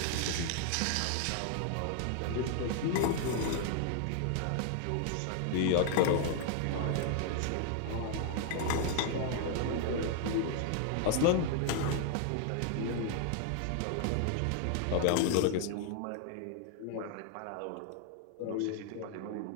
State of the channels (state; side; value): different; both; correlation 0.00